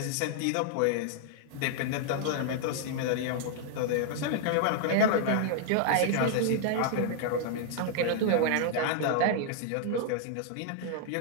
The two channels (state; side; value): different; both; correlation 0.00